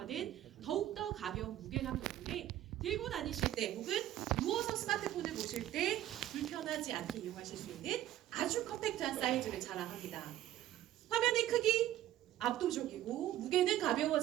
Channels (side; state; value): left; quieter; 13.1 dB